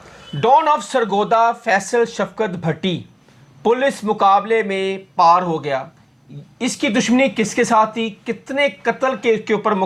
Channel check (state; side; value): identical; both; correlation 1.00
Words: ڈان آف سرگودا فیصل شفقت بھٹی پولیس مقابلے میں پار ہو گیا. اس کی دشمنی کس کے ساتھ تھی, کتنے قتل کے اوپر